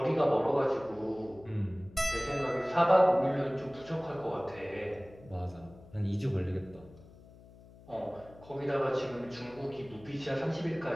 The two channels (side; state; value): left; noise; hum, 22 dB below the sound